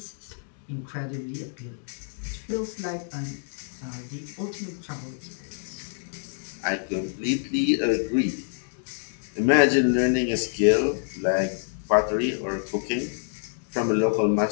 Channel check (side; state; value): right; silent; digital silence